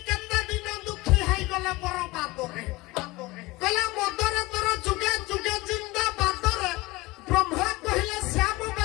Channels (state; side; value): quieter; right; 21.5 dB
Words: କେତେ ଦିନ ଦୁଃଖୀ ହେଇଗଲେ ବର ବାଦରେ କହିଲା ମଦରେ ତୋର ଯୁଗେ ଯୁଗେ ଜିନ୍ଦା ବାଦରେ ବ୍ରହ୍ମା କହିଲେ ଶ୍ୟାମ